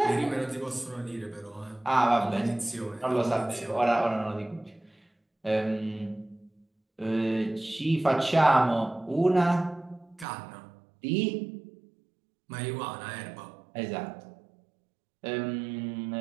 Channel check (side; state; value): left; drops out; at 10.2 s